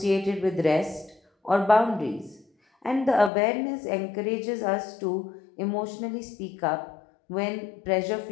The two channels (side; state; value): right; drops out; at 3.3 s